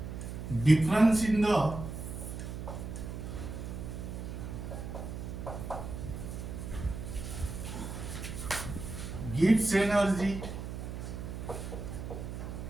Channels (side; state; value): right; noise; hum, 7 dB below the sound